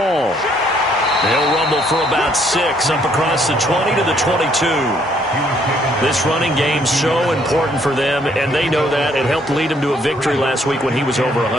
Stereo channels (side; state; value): both; normal; correlation 0.67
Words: They'll rumble for about 6 up across the 20 to the 22. This running game's so important for them, and they know that. It helped lead them to a victory last week when he was over